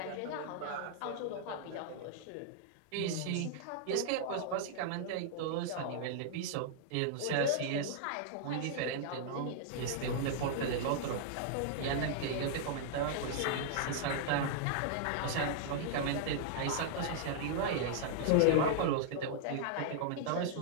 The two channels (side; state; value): both; different; correlation -0.01